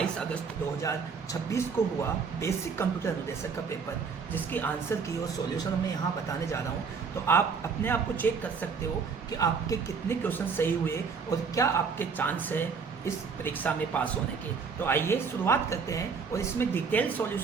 अगस्त 2026 को हुआ बेसिक कंप्यूटर अनुदेशक का पेपर, जिसकी आंसर की और सॉल्यूशन मैं यहाँ बताने जा रहा हूँ। तो आप अपने आप को चेक कर सकते हो कि आपके कितने क्वेश्चन सही हुए और क्या आपके चांस है इस परीक्षा में पास होने के। तो आइए शुरुआत करते हैं। और इसमें डिटेल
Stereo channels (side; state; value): left; quieter; 5.5 dB